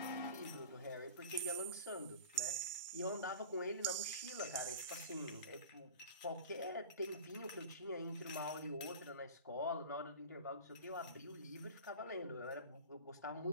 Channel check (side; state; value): both; inverted; correlation -0.36